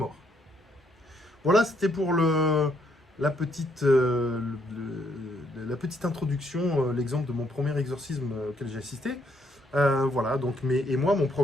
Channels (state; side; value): normal; both; correlation 0.72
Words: Voilà, c'était pour la petite introduction, l'exemple de mon premier exorcisme auquel j'ai assisté. Voilà, donc, et moi, mon